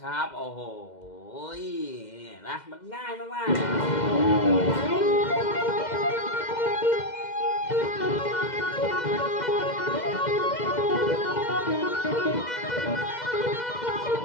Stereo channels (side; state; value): right; late; 2.1 ms